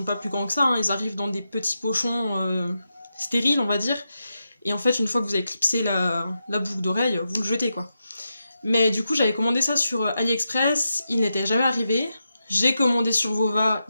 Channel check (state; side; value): inverted; both; correlation -0.88